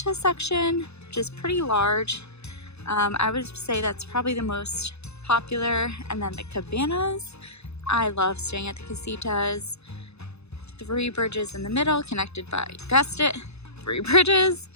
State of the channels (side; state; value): right; late; 0.80 ms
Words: section, which is pretty large. I would say that's probably the most popular, and then the Cabanas. I love staying at the Casitas. 3 bridges in the middle, connected by, you guessed it, 3 bridges.